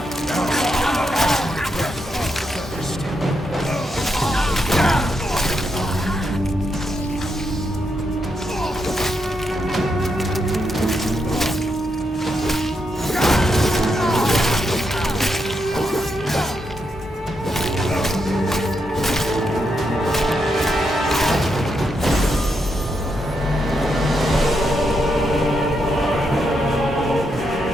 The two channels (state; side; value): normal; both; correlation 0.82